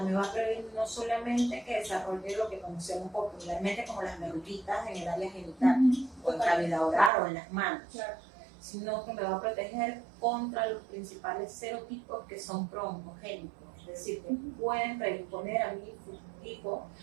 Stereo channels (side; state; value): left; drops out; at 7.1 s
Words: Me va a prevenir no solamente que desarrolle lo que conocemos popularmente como las verruguitas en el área genital, o en cavidad oral o en las manos, Claro. sino que me va a proteger contra los principales serotipos que son pro-oncogénicos, es decir, que pueden predisponer a mi hijo